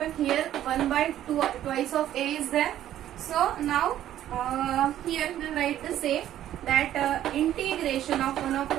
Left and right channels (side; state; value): left; quieter; 12.1 dB